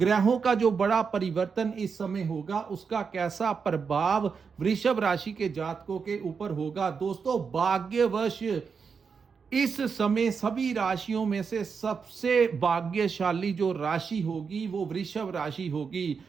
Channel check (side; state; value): left; quieter; 5.8 dB